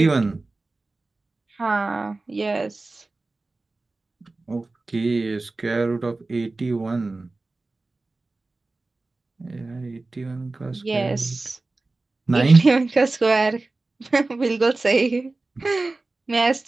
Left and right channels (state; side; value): quieter; left; 3.3 dB